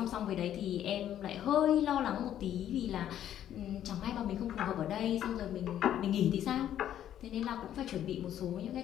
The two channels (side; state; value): right; quieter; 11.0 dB